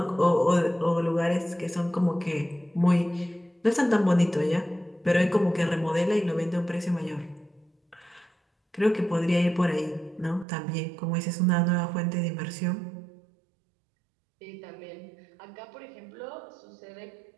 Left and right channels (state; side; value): drops out; left; at 10.5 s